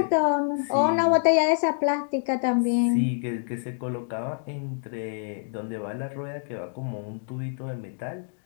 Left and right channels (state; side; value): silent; right; 61 dB below the other